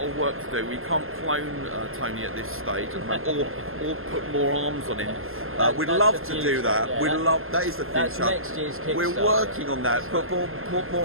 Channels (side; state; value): left; late; 0.61 ms